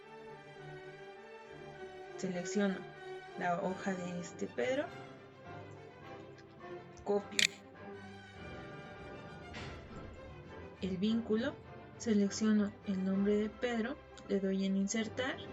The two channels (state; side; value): identical; both; correlation 1.00